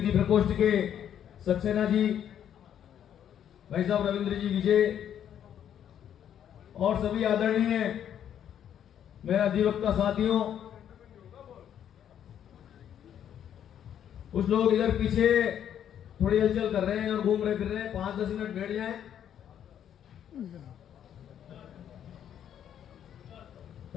प्रकोष्ठ के सक्सेना जी, भाई साहब रविंद्र जी विजय और सभी आदरणीय मेरे अधिवक्ता साथियों, कुछ लोग इधर पीछे थोड़ी हलचल कर रहे हैं और घूम रहे फिर रहे हैं। 5-10 मिनट बैठ जाएं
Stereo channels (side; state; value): right; quieter; 9.7 dB